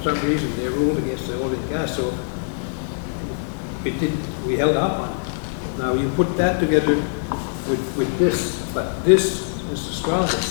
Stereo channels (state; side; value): silent; right; 64 dB below the other